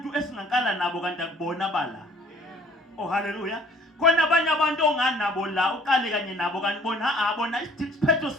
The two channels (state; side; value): normal; both; correlation 0.55